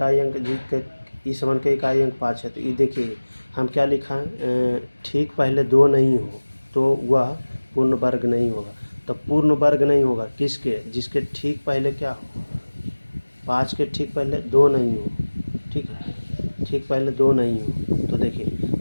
अंक ई7 के इकाई अंक 5 है, तो ये देखिए हम क्या लिखा है, ठीक पहले 2 नहीं हो तो वह पूर्ण वर्ग नहीं होगा। तो पूर्ण वर्ग नहीं होगा किसके, जिसके ठीक पहले क्या हो, 5 के ठीक पहले 2 नहीं हो। ठीक है, ठीक पहले 2 नहीं हो, तो देखिए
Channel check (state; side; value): inverted; both; correlation -1.00